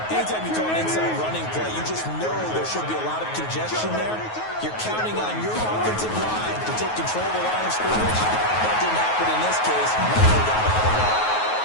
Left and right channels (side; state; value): right; late; 9.4 ms